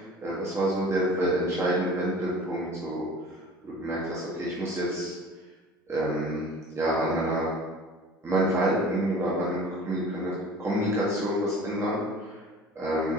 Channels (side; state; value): both; normal; correlation 0.43